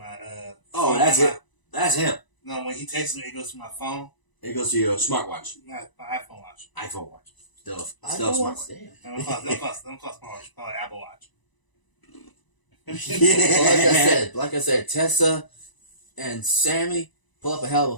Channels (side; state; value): right; late; 1.0 ms